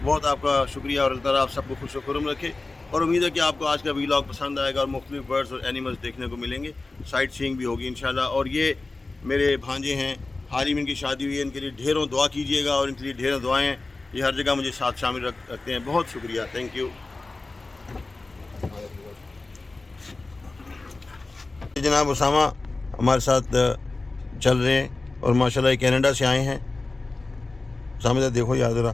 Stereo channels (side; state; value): right; quieter; 3.4 dB